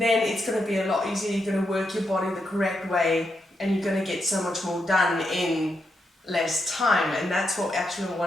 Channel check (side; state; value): both; normal; correlation 0.83